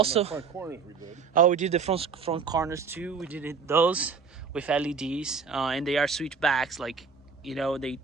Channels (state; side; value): quieter; left; 5.5 dB